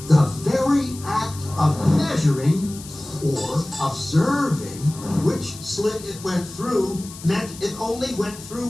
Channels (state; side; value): noise; left; hiss, 15 dB below the sound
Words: The very act of measuring or observing which slit it went through meant it only went through